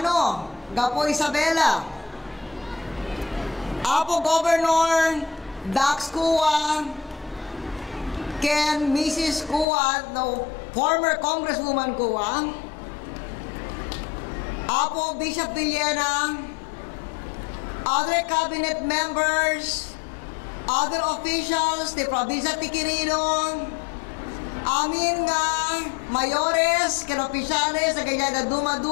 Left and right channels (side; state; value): right; drops out; at 9.7 s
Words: Gapo Isabela, Apo Governor Dax Cua, Ken Mrs. Cua, no, former Congresswoman Cua, Apo Bishop Villena, other cabinet members, other officials, the Provincia ti Quirino, amin nga mayores, ken opisyales, na ganyan na